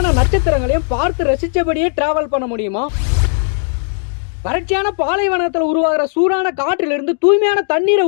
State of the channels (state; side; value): silent; right; digital silence